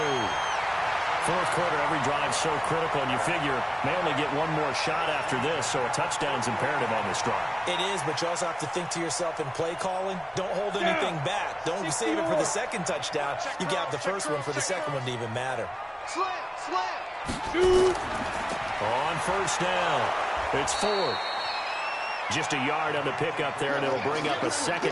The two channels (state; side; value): identical; both; correlation 1.00